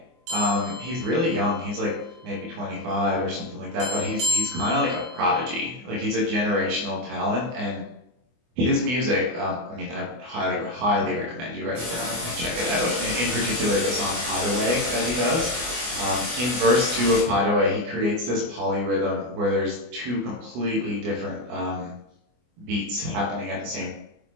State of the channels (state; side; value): late; left; 24 ms